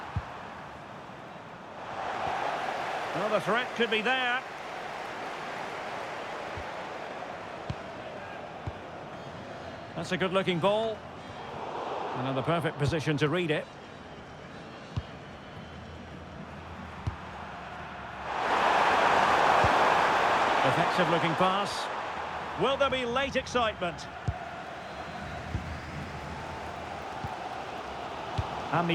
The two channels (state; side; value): identical; both; correlation 1.00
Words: Well, the threat could be there. That's a good-looking ball. And in the perfect position to read it. Effective-looking pass. Will there be late excitement?